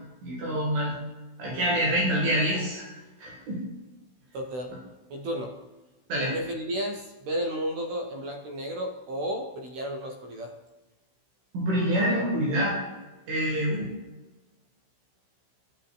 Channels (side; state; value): left; late; 16 ms